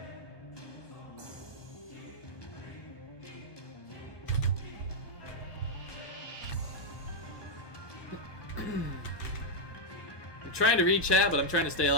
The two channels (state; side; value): late; right; 1.2 ms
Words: trying to read chat, but I'm trying to stay